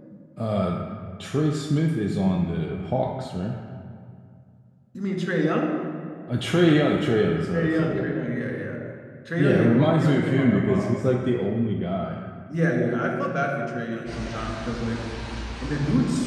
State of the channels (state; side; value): identical; both; correlation 1.00